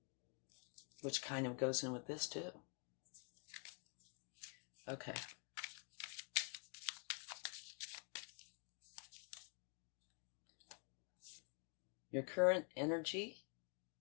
which kind of goes in with this too. Okay. Your current energy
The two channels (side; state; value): right; quieter; 36.3 dB